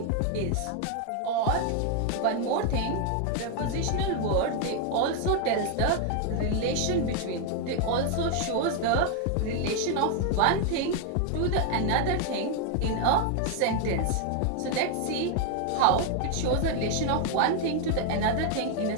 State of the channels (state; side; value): different; both; correlation 0.00